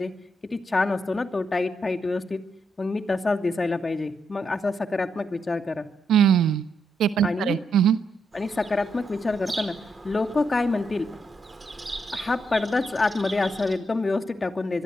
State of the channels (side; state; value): both; normal; correlation 0.80